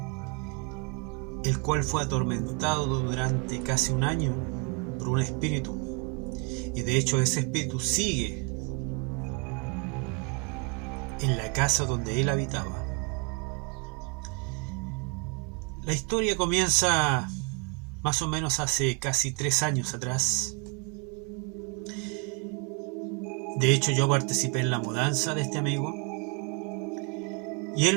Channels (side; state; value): left; quieter; 33.1 dB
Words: el cual fue atormentado durante casi un año por un espíritu, y de hecho ese espíritu sigue en la casa donde él habitaba. La historia comienza más o menos hace casi 3 años atrás. De hecho, yo participé en la mudanza de este amigo y